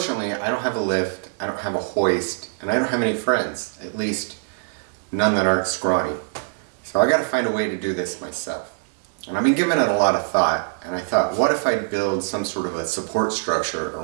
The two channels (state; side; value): silent; left; digital silence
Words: I don't have a lift, I don't have a hoist, and I don't have any friends, at least none that aren't scrawny. So I gotta find a way to do this myself. And I've been giving it a lot of thought, and I thought, what if I build some sort of a support structure